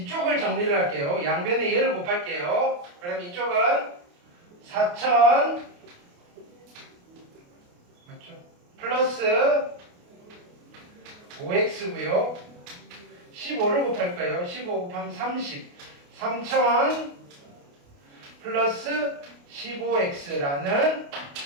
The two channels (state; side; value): late; left; 28 ms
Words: 정리를 할게요. 양변에 얘를 곱할게요. 그럼 이쪽은 4000 맞죠? 플러스 5x고요. 15를 곱할 거예요. 15 곱하면 30. 3000 플러스 15x라는